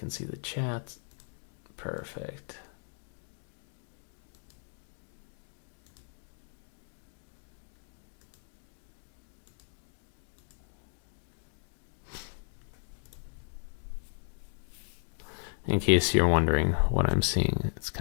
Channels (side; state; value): right; silent; 54 dB below the other